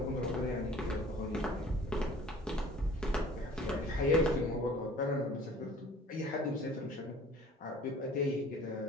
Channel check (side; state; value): both; normal; correlation 0.49